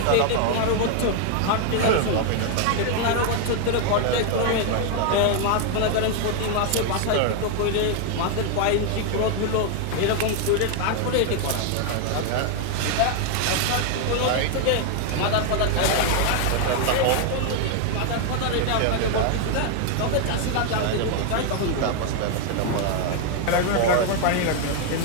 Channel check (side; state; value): both; different; correlation 0.00